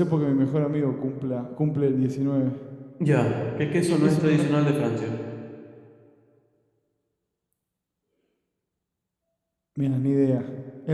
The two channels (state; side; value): identical; both; correlation 1.00